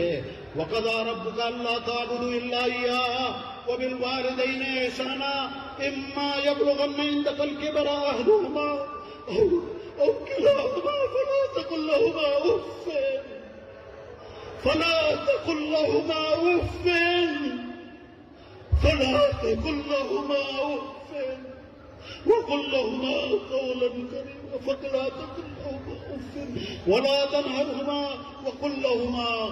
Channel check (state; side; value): identical; both; correlation 1.00